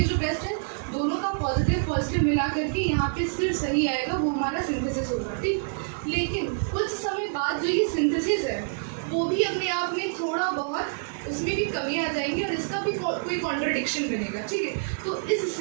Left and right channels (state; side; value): silent; left; 60 dB below the other